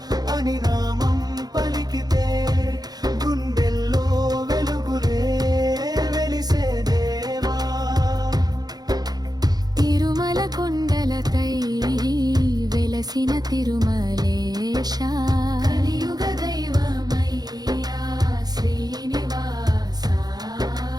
అని నామం పలికితే గుండెల్లో వెలుగులే వెలిసే దేవా. తిరుమల కొండలపై వెలసిన తిరుమలేశ, కలియుగ దైవమయ్యా శ్రీనివాస.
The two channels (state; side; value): late; left; 0.19 ms